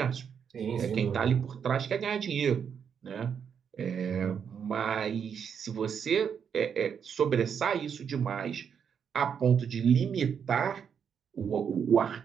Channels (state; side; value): quieter; left; 7.4 dB